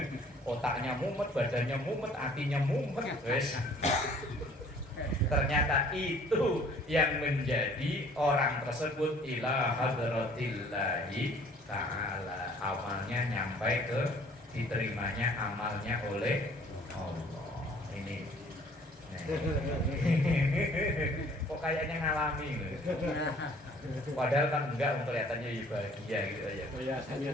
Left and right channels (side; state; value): both; normal; correlation 0.55